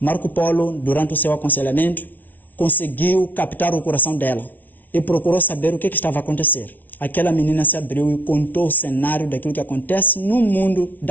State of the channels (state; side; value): late; right; 0.081 ms